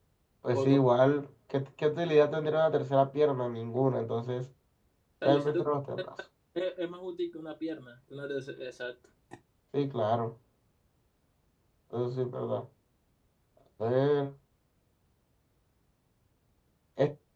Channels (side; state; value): both; identical; correlation 1.00